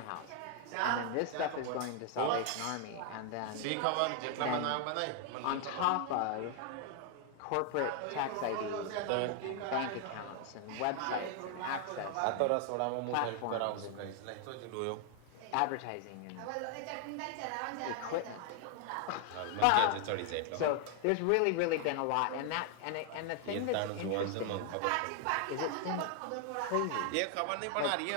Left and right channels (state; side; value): different; both; correlation 0.00